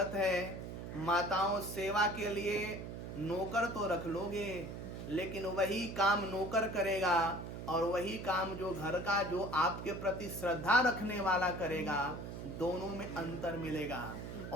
है। माताओं, सेवा के लिए नौकर तो रख लोगे, लेकिन वही काम नौकर करेगा और वही काम जो घर का जो आपके प्रति श्रद्धा रखने वाला करेगा दोनों में अंतर मिलेगा।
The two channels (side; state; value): right; noise; hum, 8 dB below the sound